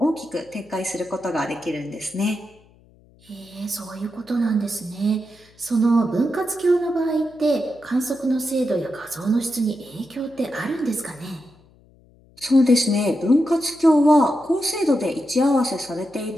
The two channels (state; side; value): noise; left; hum, 29 dB below the sound